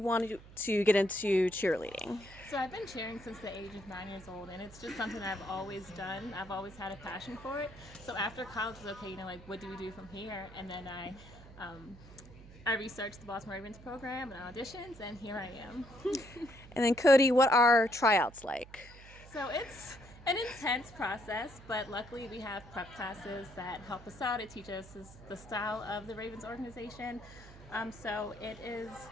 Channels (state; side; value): noise; right; hum, 18 dB below the sound